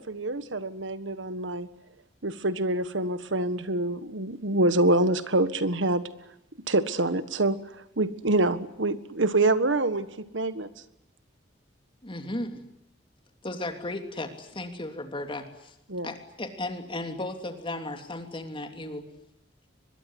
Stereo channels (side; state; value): both; normal; correlation -0.09